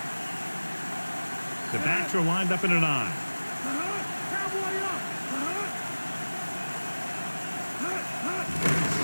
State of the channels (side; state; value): both; inverted; correlation -1.00